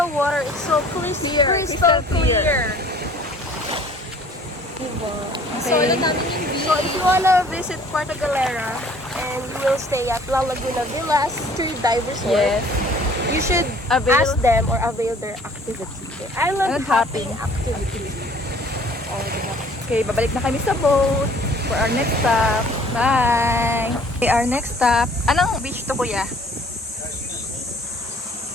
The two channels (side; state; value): both; normal; correlation 0.54